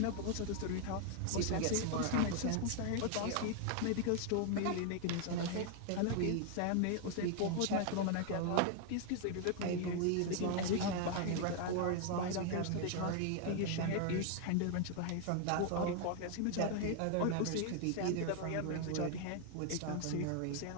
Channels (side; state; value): both; different; correlation 0.00